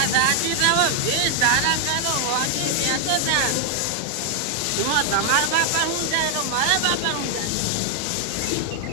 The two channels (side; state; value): both; different; correlation 0.00